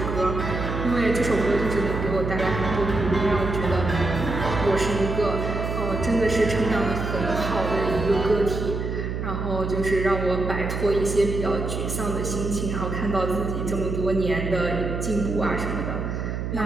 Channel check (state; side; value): noise; right; hum, 3 dB below the sound